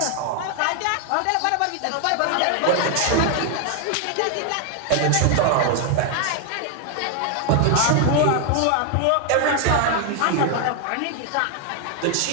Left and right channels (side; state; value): both; different; correlation 0.00